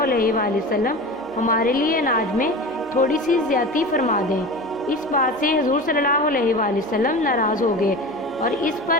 علیہ وآلہ وسلم ہمارے لیے اناج میں تھوڑی سی زیادتی فرما دیں۔ اس بات سے حضور صلی اللہ علیہ وآلہ وسلم ناراض ہو گئے اور اس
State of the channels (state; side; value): noise; right; hum, 28 dB below the sound